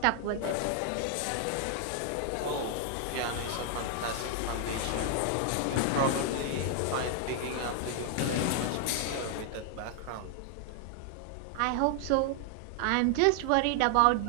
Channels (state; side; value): different; both; correlation 0.00